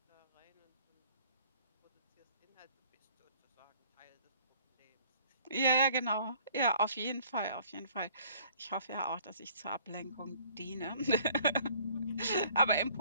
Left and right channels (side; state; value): both; inverted; correlation -0.57